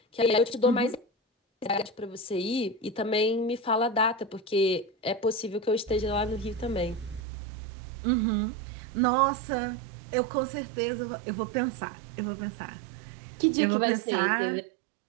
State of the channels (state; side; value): drops out; left; at 7.2 s